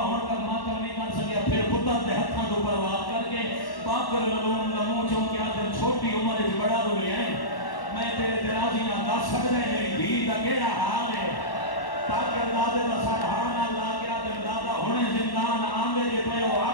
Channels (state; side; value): late; right; 1.1 ms